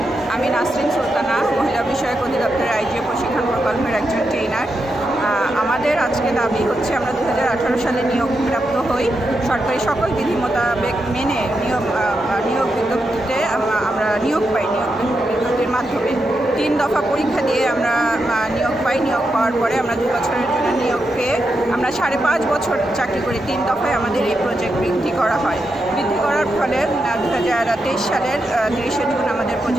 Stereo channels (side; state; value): both; normal; correlation 0.85